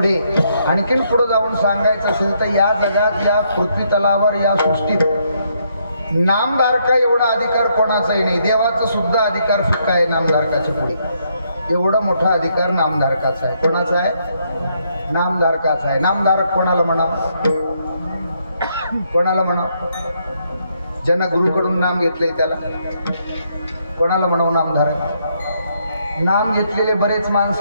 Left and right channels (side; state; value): both; inverted; correlation -0.74